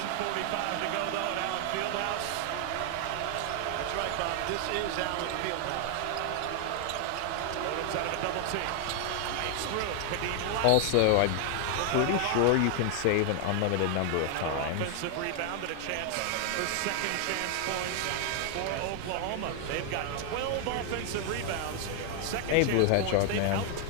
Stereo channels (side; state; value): both; different; correlation 0.00